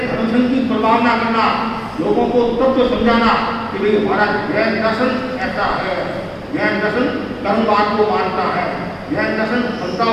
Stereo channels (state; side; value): identical; both; correlation 1.00